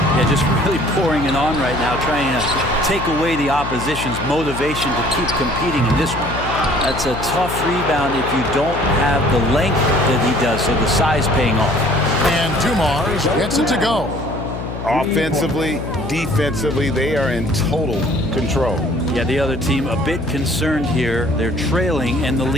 Yeah, just really pouring it on right now, trying to take away the opposition's motivation to keep competing in this one. That's a tough rebound if you don't have the length that he does, so the size paying off. And Dumars gets it to go. Offensively, defensively, they are in total control. Yeah, the other team a bit concerned here. They're trailing, and the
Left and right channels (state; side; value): noise; left; hum, 8 dB below the sound